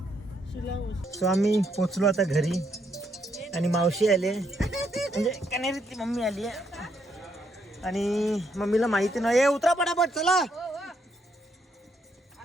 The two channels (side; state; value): both; normal; correlation 0.75